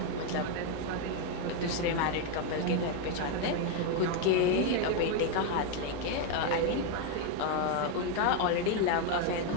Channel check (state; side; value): different; both; correlation 0.01